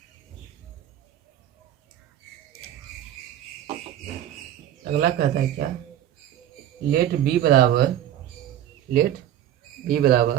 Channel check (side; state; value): left; quieter; 11.4 dB